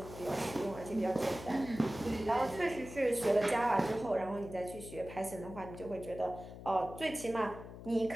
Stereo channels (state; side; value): noise; left; hum, 13 dB below the sound